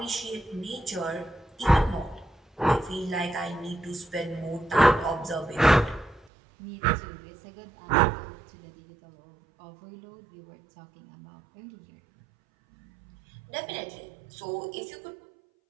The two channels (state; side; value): drops out; left; at 6.2 s